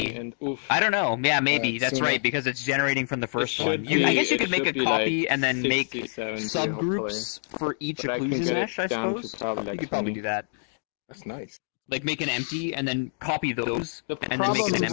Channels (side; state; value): right; silent; digital silence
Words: I don't know. Yeah, maybe. That's right, because it's generating from the first one. I guess you could make a copy and then make subgroups for each occlusion mesh, I suppose. You could probably do that. That's nice. Like make an empty and then copy those, and then make problem an is,